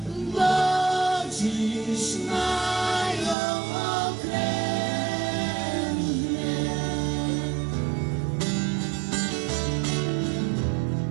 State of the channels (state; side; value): drops out; left; at 3.4 s